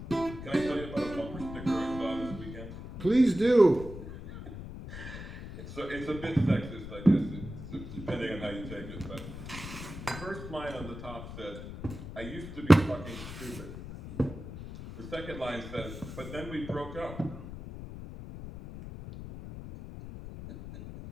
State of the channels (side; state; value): left; noise; rumble, 10 dB below the sound